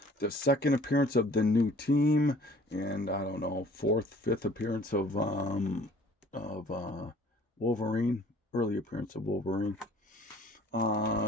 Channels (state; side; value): normal; both; correlation 0.53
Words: the second appearance of the new team, and I don't know, fifth appearance of Wolverine, early appearance of Wolverine.